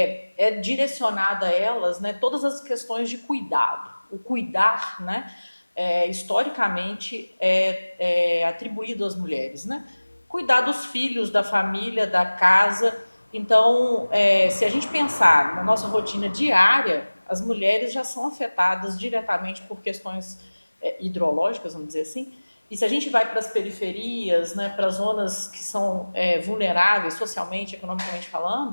direcionada a elas, né, todas as questões de cuidado. O cuidar, né, historicamente, é atribuído às mulheres, né? Cuidar dos filhos, da família, da casa. Então, se a gente pensar na nossa rotina diária, as mulheres já são afetadas diretamente por questões hidrológicas, vamos dizer assim. E se a gente vai para as periferias, né, para as zonas que são vulneráveis socialmente, economicamente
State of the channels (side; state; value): both; inverted; correlation -1.00